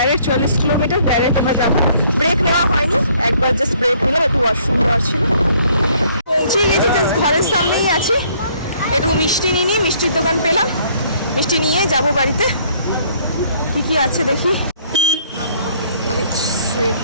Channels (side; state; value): both; inverted; correlation -0.62